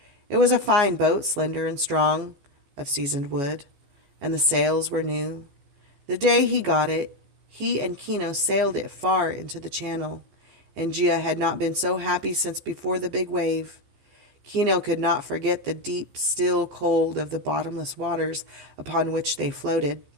It was a fine boat, slender and strong, of seasoned wood, and the sails were new. The day he got it, he and Kino sailed it far into the channel, and Gia had not been so happy since before the big wave. Kino could not forget the deep, still cold of the bottomless waters upon which they floated.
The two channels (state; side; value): late; left; 14 ms